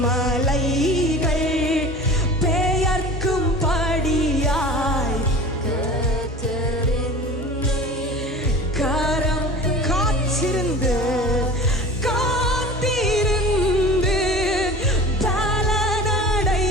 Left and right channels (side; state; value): both; normal; correlation 0.38